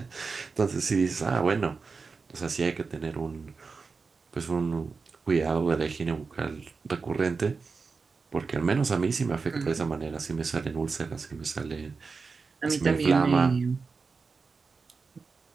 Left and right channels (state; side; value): quieter; left; 4.6 dB